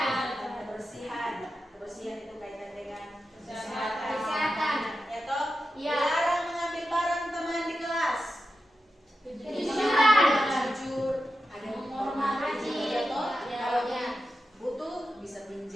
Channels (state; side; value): normal; both; correlation 0.90